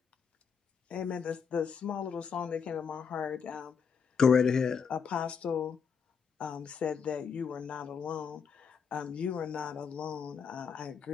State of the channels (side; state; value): right; quieter; 6.4 dB